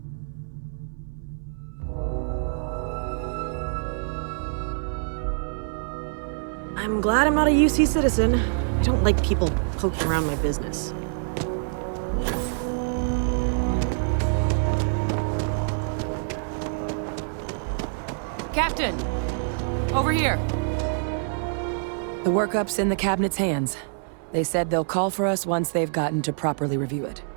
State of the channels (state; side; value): silent; left; 61 dB below the other